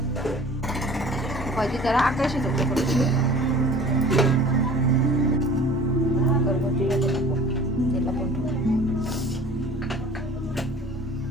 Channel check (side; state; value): both; normal; correlation 0.46